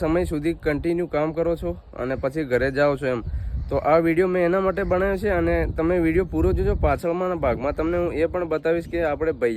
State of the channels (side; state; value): both; identical; correlation 1.00